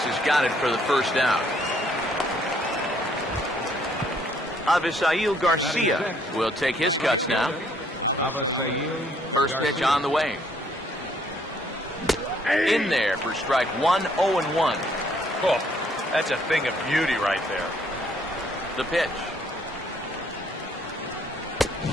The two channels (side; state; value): both; normal; correlation 0.66